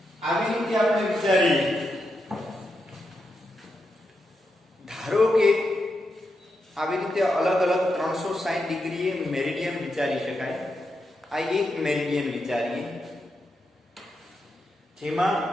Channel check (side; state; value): both; normal; correlation 0.85